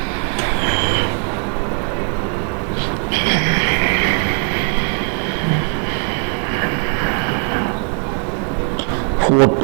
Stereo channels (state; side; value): quieter; left; 39.5 dB